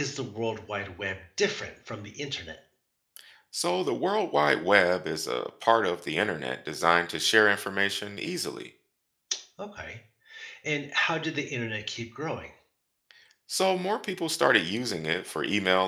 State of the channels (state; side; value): identical; both; correlation 1.00